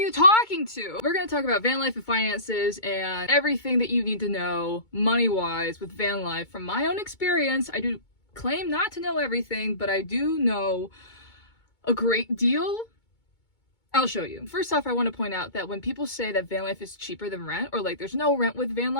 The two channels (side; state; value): right; late; 2.2 ms